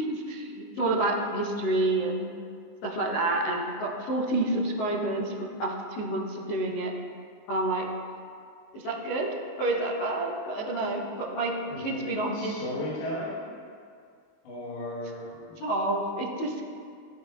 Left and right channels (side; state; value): right; late; 19 ms